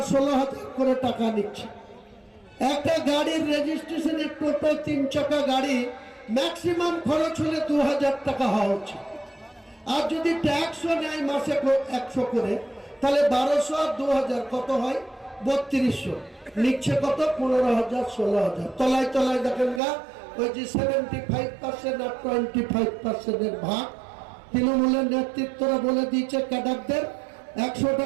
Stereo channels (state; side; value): drops out; left; at 19.8 s